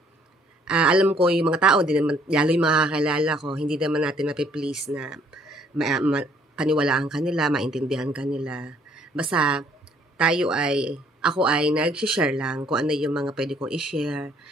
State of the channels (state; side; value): normal; both; correlation 0.63